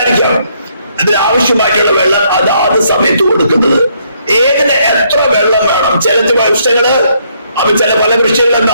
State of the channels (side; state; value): both; inverted; correlation -0.71